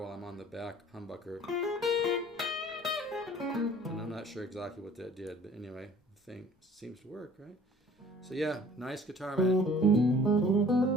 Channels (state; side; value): normal; both; correlation 0.50